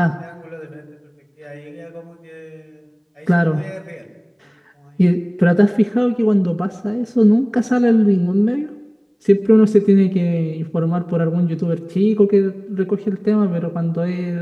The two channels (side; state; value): both; identical; correlation 1.00